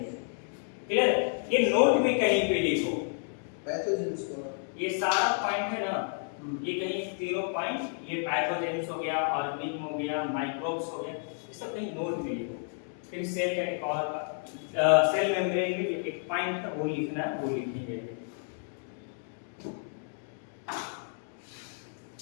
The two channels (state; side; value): silent; right; 57 dB below the other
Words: क्लियर? ये नोट में कहीं पे लिखो, पैथोजेंस को। ये सारा पॉइंट है ना, ये कहीं तीनों पॉइंट, ये पैथोजेंस हो गया, ऑर्गेनिज्म हो गया, माइक्रोब्स हो गया, ये सब कहीं नोट में लिखो। फिर सेल का एक और सेल मेम्ब्रेन में जो एक पॉइंट है वो लिखना है, वो लिखेंगे।